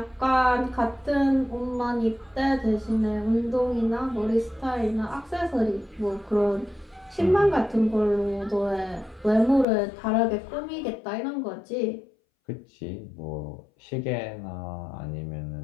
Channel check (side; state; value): right; drops out; at 9.7 s